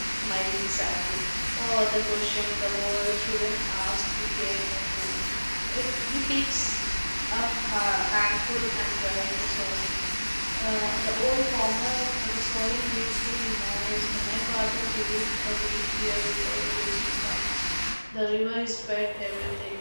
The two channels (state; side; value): inverted; both; correlation -1.00